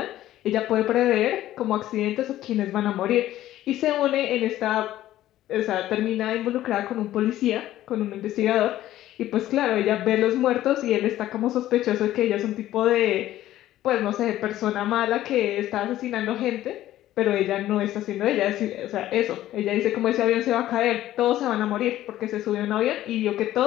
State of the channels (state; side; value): quieter; right; 13.9 dB